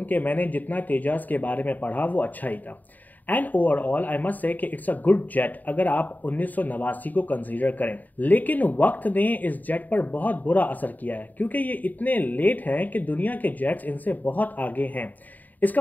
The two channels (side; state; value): right; late; 0.083 ms